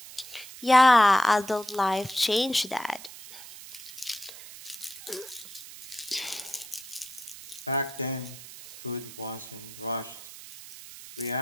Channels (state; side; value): noise; right; hiss, 15 dB below the sound